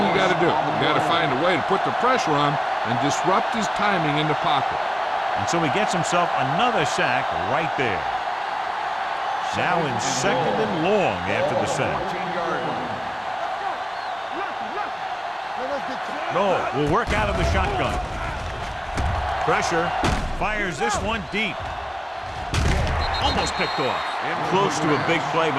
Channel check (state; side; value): identical; both; correlation 1.00